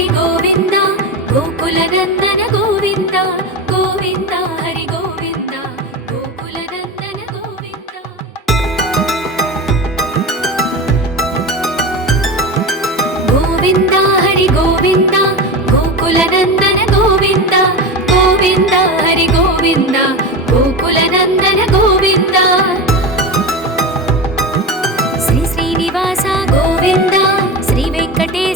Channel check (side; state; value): both; normal; correlation 0.24